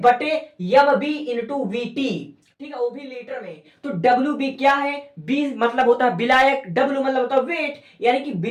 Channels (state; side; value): identical; both; correlation 1.00